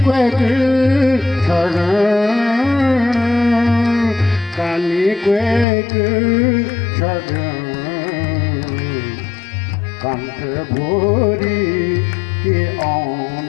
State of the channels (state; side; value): drops out; right; at 5.7 s